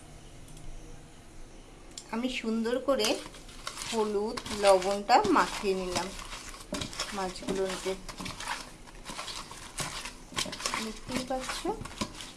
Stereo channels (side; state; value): both; identical; correlation 1.00